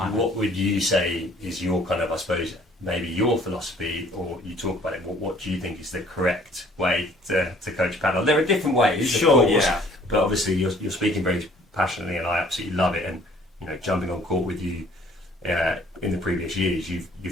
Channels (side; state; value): both; normal; correlation 0.57